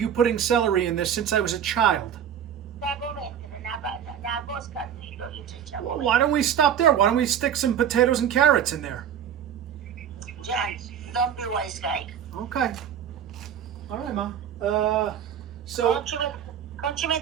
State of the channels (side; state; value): left; quieter; 9.0 dB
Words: putting celery in this since I was a child. Why don't we stop there? Why don't we stick some potatoes and carrots in there? John, don't be wise guy. Okay. All right, Ma. So...